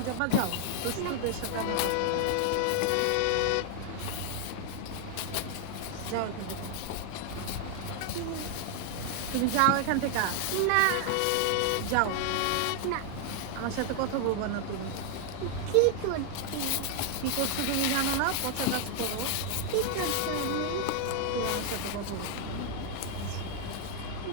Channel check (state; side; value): different; both; correlation 0.00